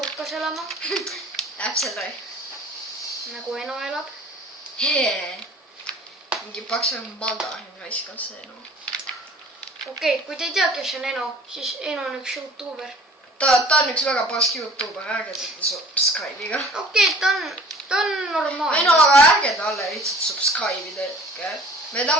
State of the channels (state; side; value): normal; both; correlation 0.49